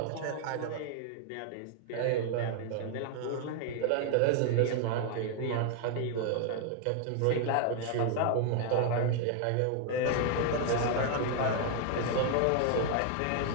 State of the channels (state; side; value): different; both; correlation 0.00